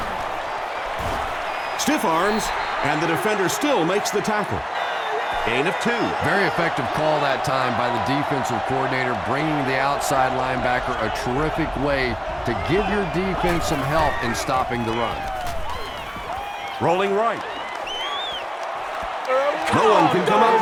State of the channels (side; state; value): both; identical; correlation 1.00